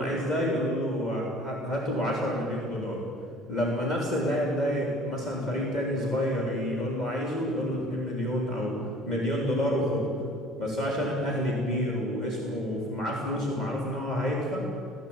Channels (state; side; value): normal; both; correlation 0.50